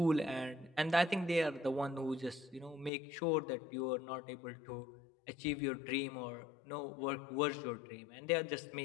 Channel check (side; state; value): right; drops out; at 2.9 s